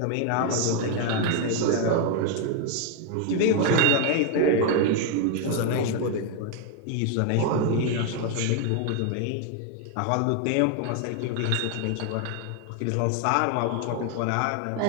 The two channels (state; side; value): different; both; correlation 0.01